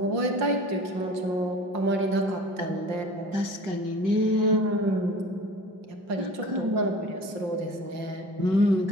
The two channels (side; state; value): left; late; 5.6 ms